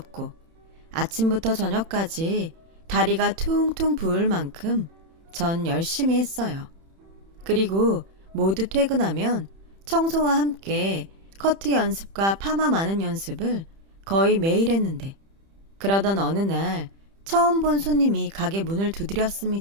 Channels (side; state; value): left; late; 30 ms